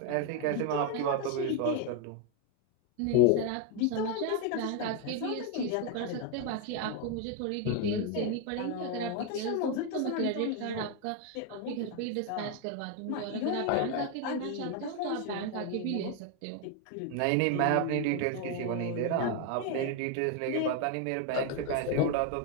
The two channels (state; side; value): different; both; correlation 0.01